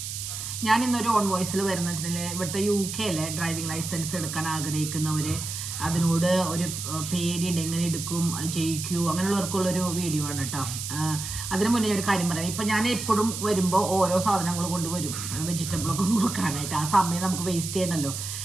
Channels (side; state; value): right; noise; hiss, 6 dB below the sound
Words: ഞാൻ ഇന്നൊരു ഓൺ വോയിസിൽ വരുന്ന വെച്ചിട്ടുണ്ടെങ്കിൽ ഇവിടുത്തെ UK ഡ്രൈവിംഗ് ലൈസൻസ് എടുക്കാൻ ആഗ്രഹിക്കുന്നവർ അതിനോട് ഒരു പേടിയുണ്ട്, എങ്ങനെ എടുക്കും, ജയിക്കൂ, അങ്ങനെയുള്ളവർക്കുള്ളൊരു വീഡിയോ ആണ് കേട്ടോ. അതിന് മുന്നേ ഒരു കാര്യം പറയാം. ഇപ്പം ഞാൻ എപ്പോഴും വരുമ്പോൾ ഓരോ സാധനങ്ങൾ കൊണ്ടുവരും, വെജിറ്റബിളൊക്കെ നുറുക്കാനായിട്ട്. ആ സമയം നമുക്ക് വേസ്റ്റ് ചെയ്യണമല്ലോ.